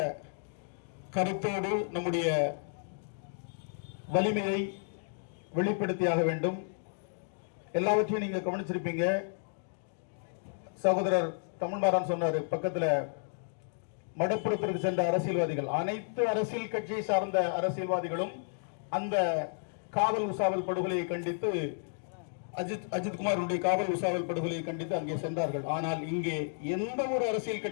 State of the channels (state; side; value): silent; right; digital silence